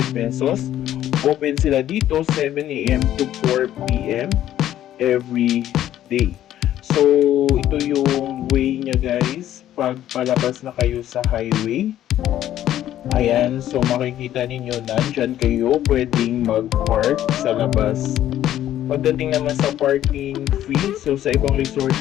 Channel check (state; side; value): quieter; right; 12.2 dB